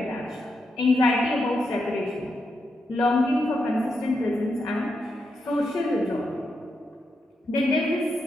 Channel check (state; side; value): normal; both; correlation 0.84